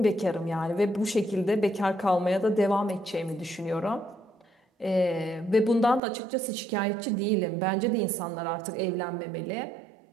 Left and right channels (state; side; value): drops out; left; at 6.0 s